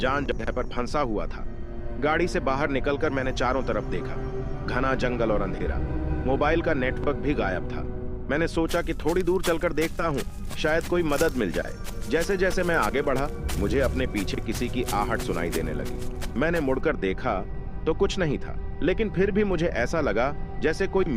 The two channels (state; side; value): identical; both; correlation 1.00